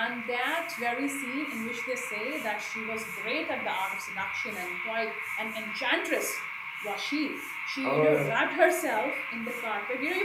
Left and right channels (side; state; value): both; identical; correlation 1.00